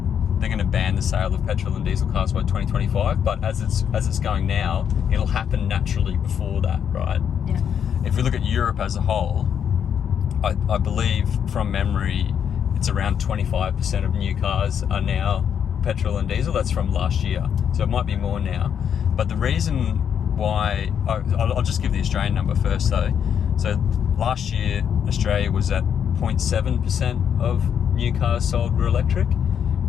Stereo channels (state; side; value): quieter; right; 8.2 dB